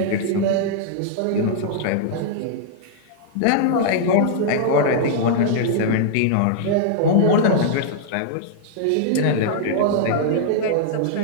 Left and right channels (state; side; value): different; both; correlation -0.02